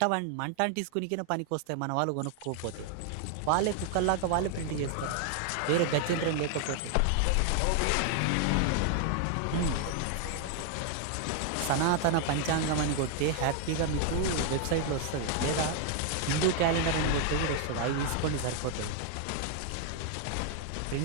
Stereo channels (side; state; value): both; different; correlation 0.00